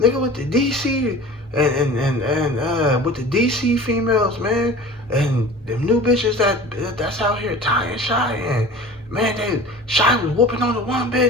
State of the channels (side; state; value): both; normal; correlation 0.39